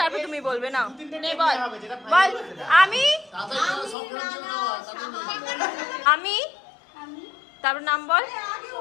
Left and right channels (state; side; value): drops out; right; at 4.0 s